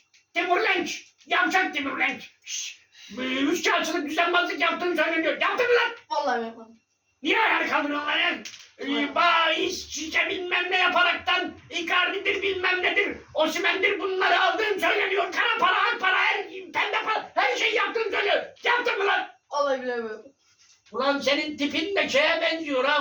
Timur Lenç. Yavşak Timur Lenç. Üçkağıtçılık düzenbazlık yaptığını söyleniyor. Yaptın mı lan? Vallahi yapmadım. Niye ayağa kaldırıyorsun lan ya? Bahis, şişe bilmem ne yaparaktan Icardi'dir bilmem nedir, Osimhen'dir bunları aldığın söyleniyor. Kara para, ak para, pembe para, her şeyi yaptığını söylüyor. Yaptın mı lan? Vallahi bilemiyorum. Ulan senin tipin de şeye benziyor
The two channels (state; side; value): identical; both; correlation 1.00